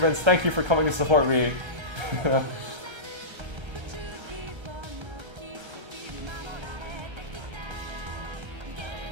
Thank you for coming to support me.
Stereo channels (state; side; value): late; left; 1.3 ms